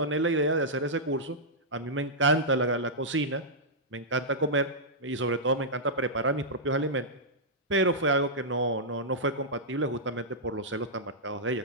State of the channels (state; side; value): normal; both; correlation -0.11